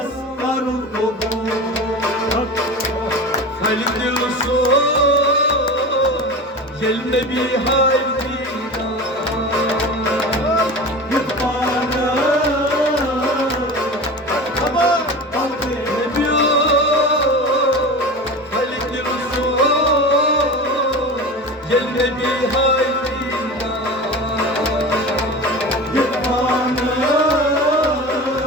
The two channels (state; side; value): normal; both; correlation 0.31